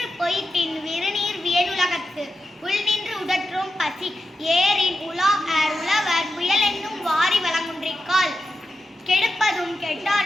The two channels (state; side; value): normal; both; correlation 0.89